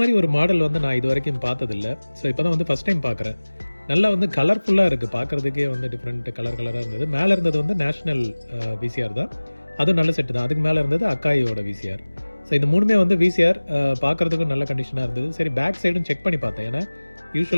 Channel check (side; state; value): both; inverted; correlation -1.00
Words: ஒரு மாடல் வந்து நான் இது வரைக்கும் பார்த்ததில்லை. ஸோ இப்போ தான் வந்து ஃபஸ்ட் டைம் பார்க்குறேன். நல்லா வந்து கலர்ஃபுல்லாக இருக்குது, பார்க்குறதுக்கே வந்து டிஃப்ரெண்ட் கலராக இருந்தது. மேலே இருந்தது வந்து நேஷ்னல் விசிஆர் தான், அதுவும் நல்ல செட்டு தான். அதுக்கு மேலே இருந்தது அக்காயோட விசிஆர். ஸோ இந்த மூணுமே வந்து விசிஆர் பார்க்குறதுக்கும் நல்ல கண்டிஷனாக இருந்தது. சரி, பேக் சைடும் செக் பண்ணி பார்த்தேன். ஏன்னா